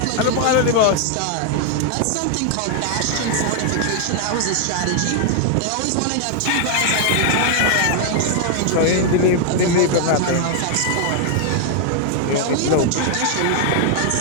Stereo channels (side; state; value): both; different; correlation 0.00